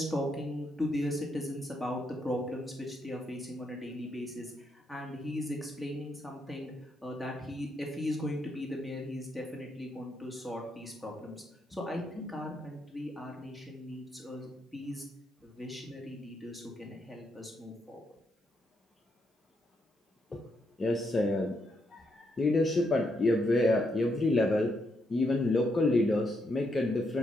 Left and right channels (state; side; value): normal; both; correlation 0.78